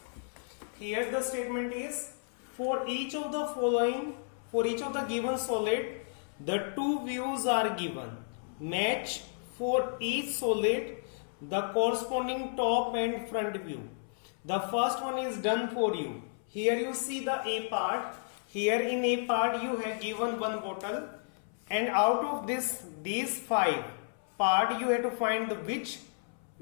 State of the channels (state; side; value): silent; right; 56 dB below the other